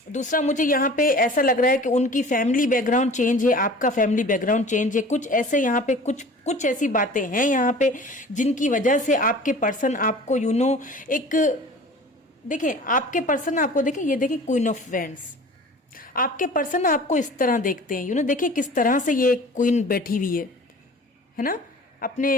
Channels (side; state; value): both; normal; correlation 0.43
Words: दूसरा मुझे यहाँ पे ऐसा लग रहा है कि उनकी फैमिली बैकग्राउंड चेंज है, आपका फैमिली बैकग्राउंड चेंज है, कुछ ऐसे यहाँ पे कुछ ऐसी बातें हैं यहाँ पे जिनकी वजह से आपके पर्सन आपको एक देखें, आपके पर्सन आपको देखें, ये देखें क्वीन ऑफ वैंड्स, आपके पर्सन आपको इस तरह देखते हैं, देखिए किस तरह से ये क्वीन बैठी हुई है ना,